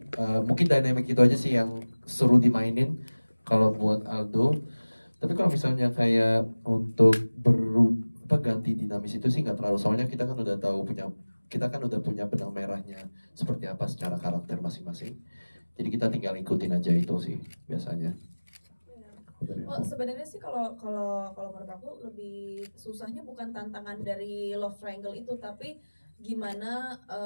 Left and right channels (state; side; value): inverted; both; correlation -1.00